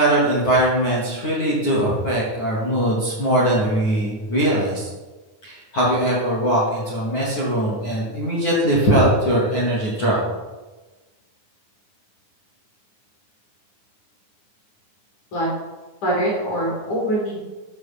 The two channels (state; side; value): late; right; 9.5 ms